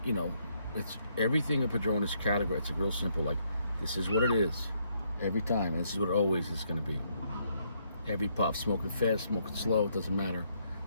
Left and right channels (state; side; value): inverted; both; correlation -0.73